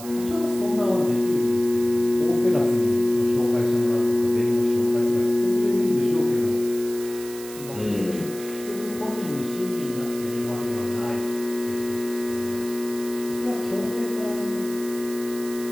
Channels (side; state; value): right; noise; hiss, 14 dB below the sound